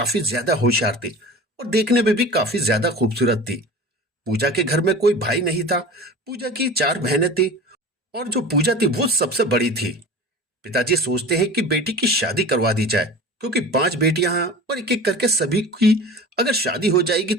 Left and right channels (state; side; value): normal; both; correlation 0.36